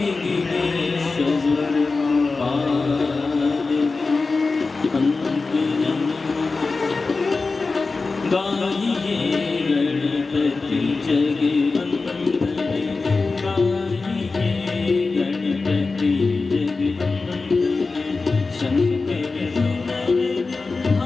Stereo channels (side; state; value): right; quieter; 4.0 dB